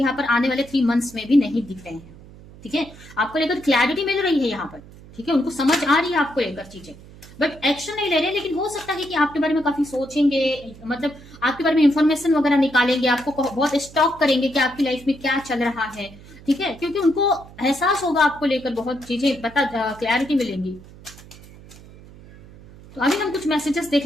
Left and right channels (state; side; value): noise; right; hum, 20 dB below the sound